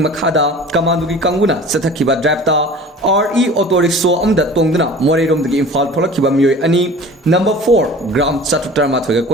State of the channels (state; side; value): normal; both; correlation 0.42